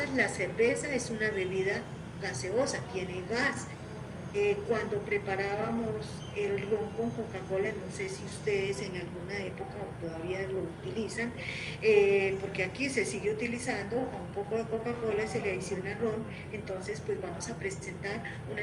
la cerveza es una bebida gaseosa, tiene gas. Cuando preparábamos el ron con Coca-Cola, no sé si ustedes en alguna época todavía lo utilizan, porque aquí se sigue utilizando a un poco de Coca-Cola, se le adiciona ron, entonces pues vamos a presentar una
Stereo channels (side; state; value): both; identical; correlation 1.00